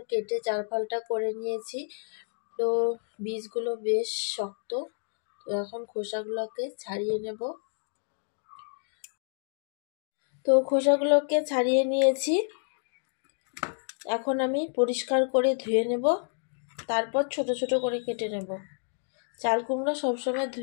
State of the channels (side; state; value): right; silent; digital silence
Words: কেটে চার ফালটা করে নিয়েছি। তো বীজগুলো বেশ শক্ত, তো এখন খোসাগুলোকে ছাড়িয়ে নেব। তো খোসাগুলোকে ছাড়িয়ে নিয়েছি, এখন আমি পরিষ্কার করে ধুয়ে নেব, তারপর ছোট ছোট করে কেটে নেব। চাল কুমড়ো সবসময়